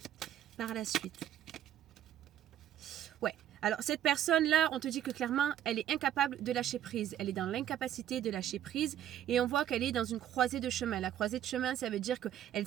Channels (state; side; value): quieter; left; 11.1 dB